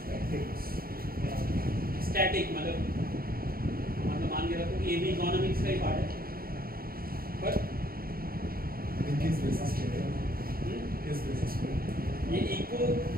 स्टैटिक मतलब मान के रखो कि ये भी इकोनॉमिक्स का ही पार्ट है, पर किस बेसिस पे? ये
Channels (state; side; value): late; left; 0.43 ms